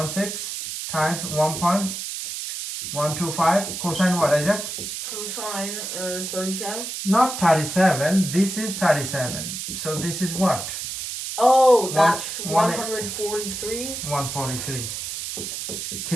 times 1.125. Cosine what, Isaac? Cosine 37. Not 37. This is 37. So this is what? Oh, that's 143. 143. 143.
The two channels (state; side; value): noise; right; hiss, 6 dB below the sound